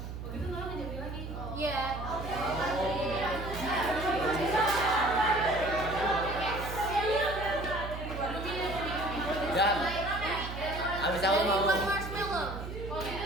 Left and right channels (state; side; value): noise; right; hum, 8 dB below the sound